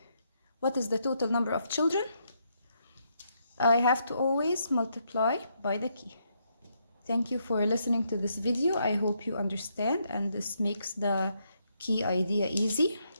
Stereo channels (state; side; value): inverted; both; correlation -0.77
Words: what is the total number of children, I have to always multiply by the key. Thank you for listening to this video. I hope you understand and this makes the key idea easy.